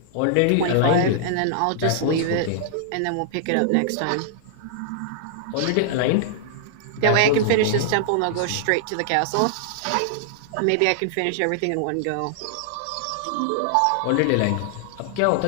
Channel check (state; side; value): different; both; correlation -0.01